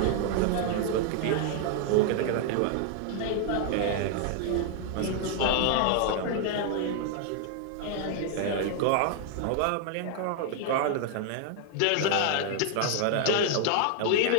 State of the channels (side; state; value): both; different; correlation 0.00